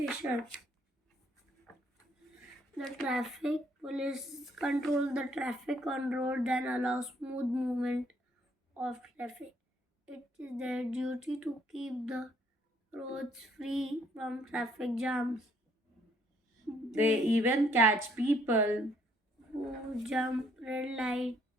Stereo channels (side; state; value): both; normal; correlation 0.66